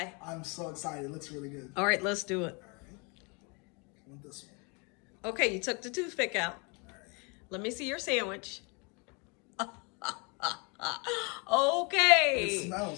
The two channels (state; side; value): quieter; right; 31.6 dB